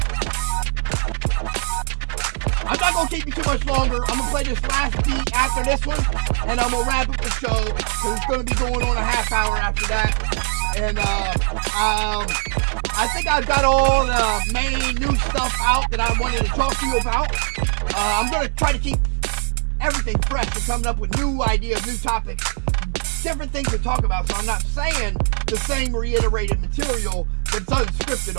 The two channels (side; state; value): left; silent; digital silence